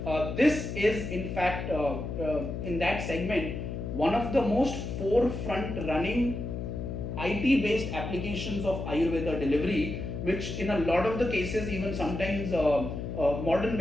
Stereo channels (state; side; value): noise; left; hum, 5 dB below the sound